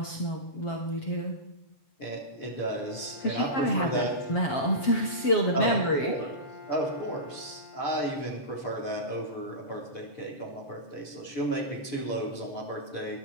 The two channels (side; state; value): right; late; 7.3 ms